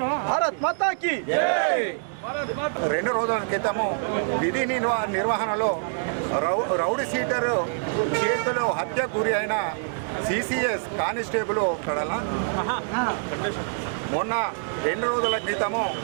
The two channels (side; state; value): left; silent; digital silence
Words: భారత్ మాతాకి 2 రోజుల క్రితము విధి నిర్వహణలో రౌడీ షీటర్ చేతిలో హత్యకు గురి అయిన సిసిఎస్ కానిస్టేబుల్ మొన్న 2 రోజుల క్రితము